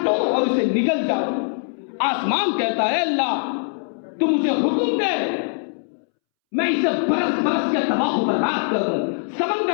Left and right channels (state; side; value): silent; right; 64 dB below the other